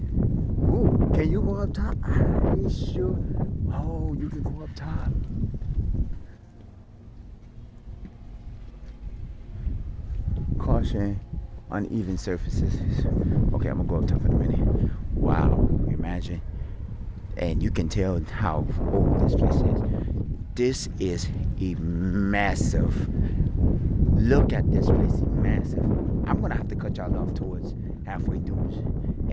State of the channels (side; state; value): both; identical; correlation 1.00